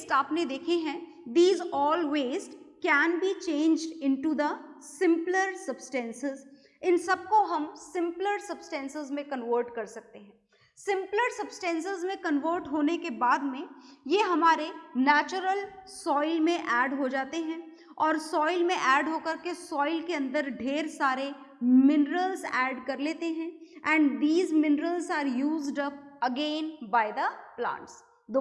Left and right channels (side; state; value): both; identical; correlation 1.00